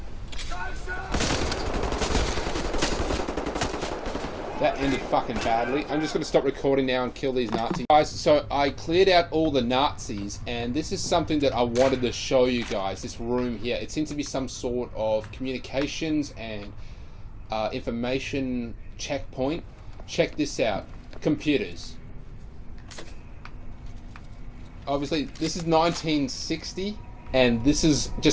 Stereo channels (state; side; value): identical; both; correlation 1.00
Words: That ended fucking badly. I'm just going to stop recording now and kill these Nazis. Guys, so I cleared out all the Nazis, and this is something that I wanted to show you guys, this room here. It seems to be some sort of communications and information checkpoint. Check this out. Computers. Obviously, this is 1960, and this is